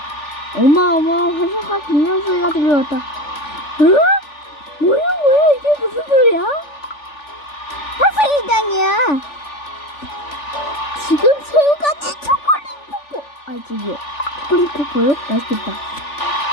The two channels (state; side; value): late; right; 3.4 ms